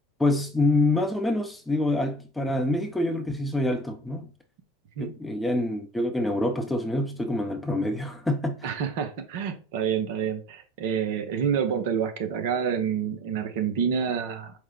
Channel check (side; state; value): both; normal; correlation 0.44